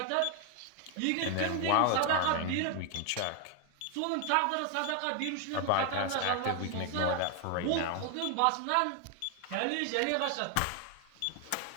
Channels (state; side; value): different; both; correlation 0.00